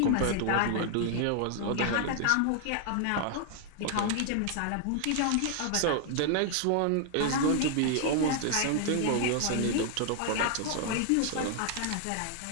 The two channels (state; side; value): different; both; correlation 0.00